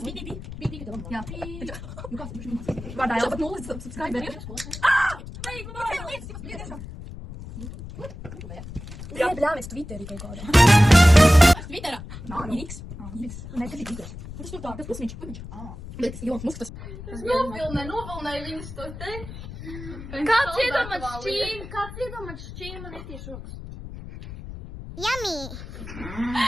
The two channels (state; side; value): noise; left; rumble, 11 dB below the sound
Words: Pī, ka tev. Jā. Nu kāds, vārdā Elza pat nulles subscriberi. Jā, bļāmies Twitterī kaut kādā. Twitterā? Nā, X. Nē, tas ir Twitter. Tas tur tā, tas pusmiņš. Bet tas Ilons Musks tas. Es novilnēju viņus to te. Kāds iedomāt šķīm man ir tieši rokas? Yummy!